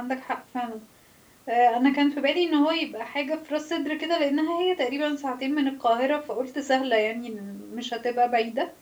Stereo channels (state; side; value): identical; both; correlation 1.00